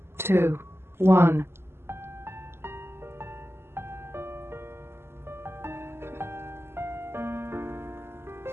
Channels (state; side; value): late; left; 0.12 ms